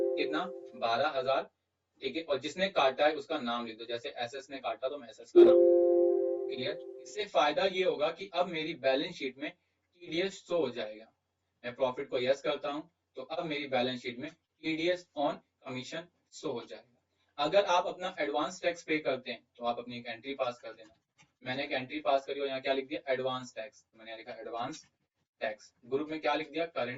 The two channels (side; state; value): both; identical; correlation 1.00